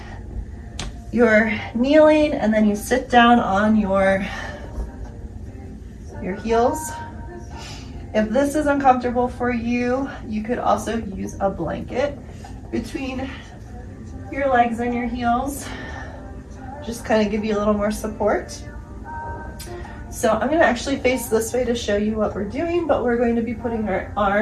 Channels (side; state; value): both; identical; correlation 1.00